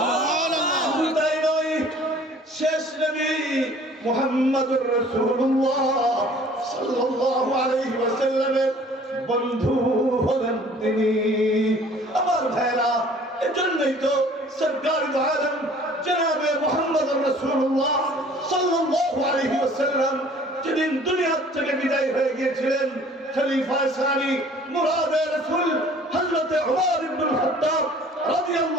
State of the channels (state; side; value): normal; both; correlation 0.52